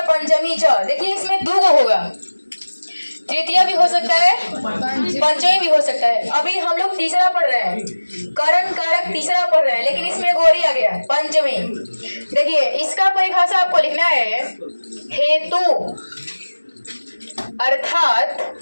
पंचमी च। देखिए इसमें दो गो होगा, तृतीया भी हो सकता है, पंचमी भी हो सकता है। अभी हम लोग तीसरा पढ़ रहे हैं, करण कारक तीसरा पढ़ रहे हैं, लेकिन इसमें गोरी आ गया पंचमी। देखिए इसका परिभाषा आपको लिखना है, हेतु अर्थात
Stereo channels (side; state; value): both; inverted; correlation -1.00